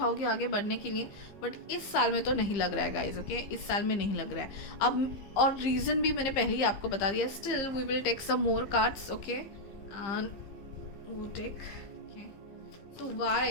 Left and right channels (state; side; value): late; right; 15 ms